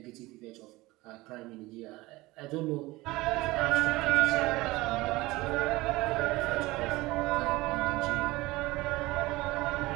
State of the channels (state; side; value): quieter; left; 20.3 dB